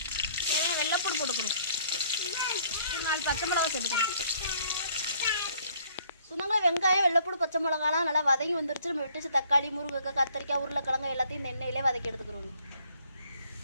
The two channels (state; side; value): inverted; both; correlation -0.61